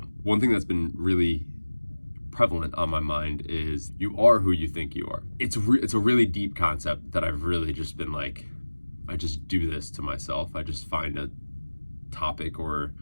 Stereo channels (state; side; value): inverted; both; correlation -1.00